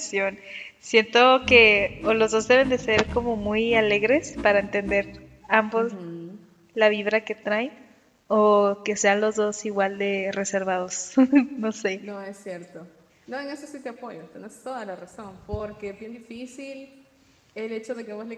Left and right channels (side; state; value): both; identical; correlation 1.00